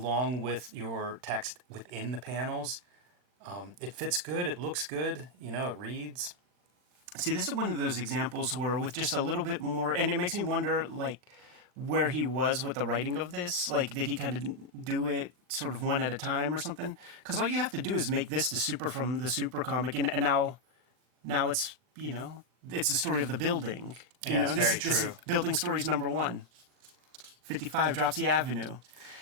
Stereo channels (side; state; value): left; late; 40 ms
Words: with your text within the panels. It fits good. It looks good. You know, it reads. See, this is one of those examples where with just a little bit more, and it makes me wonder, like, where he was with the writing of this. Like, did he kind of do it sort of one at a time or something? Because all you have to do is make this the super from the super comic, and now it's, it's the story of the building. This is Building Stories number 1. 55 Dropsy Avenue.